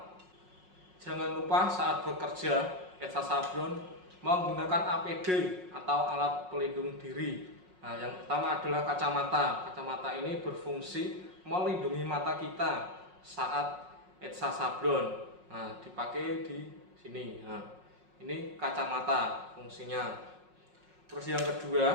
Jangan lupa saat bekerja etsa sablon menggunakan APD atau alat pelindung diri. Nah, yang pertama adalah kacamata. Kacamata ini berfungsi melindungi mata kita saat etsa sablon. Nah, dipakai di sini. Nah, ini kacamata fungsinya. Terus yang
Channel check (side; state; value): left; late; 5.5 ms